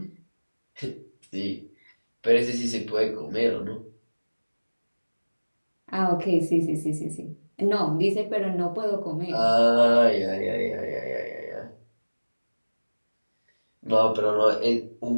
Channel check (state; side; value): inverted; both; correlation -1.00